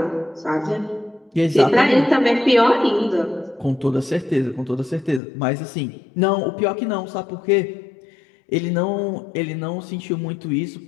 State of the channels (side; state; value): right; drops out; at 5.2 s